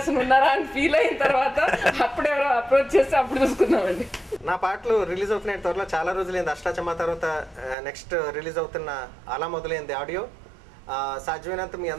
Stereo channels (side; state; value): left; drops out; at 7.8 s